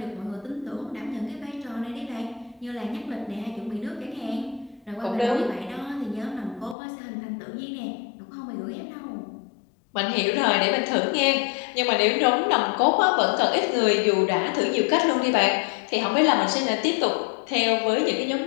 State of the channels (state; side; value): drops out; right; at 6.8 s